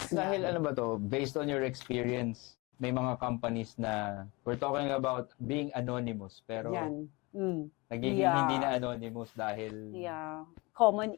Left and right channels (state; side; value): quieter; right; 25.4 dB